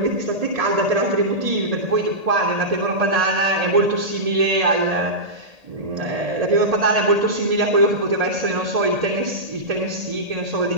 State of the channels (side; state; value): left; late; 1.8 ms